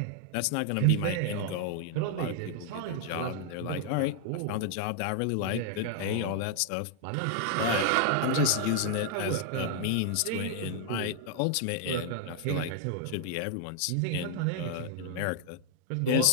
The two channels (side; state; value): both; different; correlation 0.00